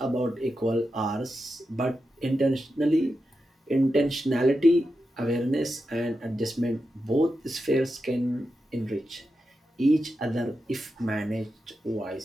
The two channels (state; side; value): normal; both; correlation 0.89